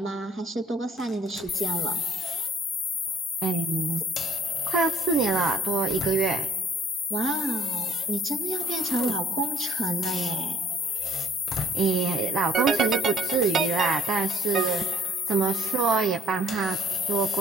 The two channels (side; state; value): both; normal; correlation 0.59